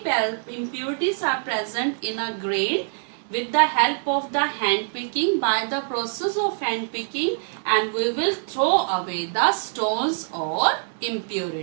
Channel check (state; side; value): silent; left; digital silence